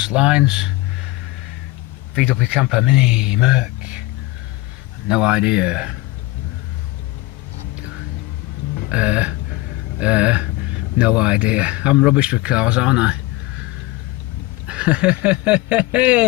lines. VW Camper Mini Merc. No idea. No idea. I'm rubbish with cars, aren't I?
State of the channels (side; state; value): right; quieter; 18.8 dB